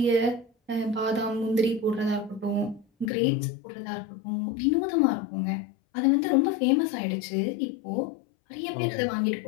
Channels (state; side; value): drops out; right; at 3.1 s